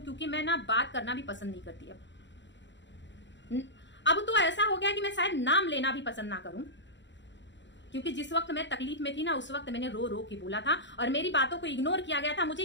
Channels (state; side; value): late; right; 0.53 ms